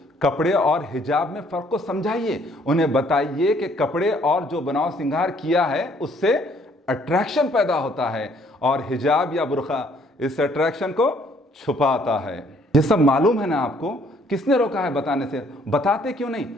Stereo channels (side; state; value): both; normal; correlation 0.63